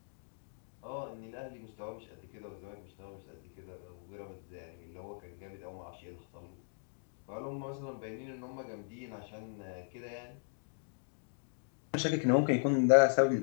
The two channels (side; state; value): right; silent; digital silence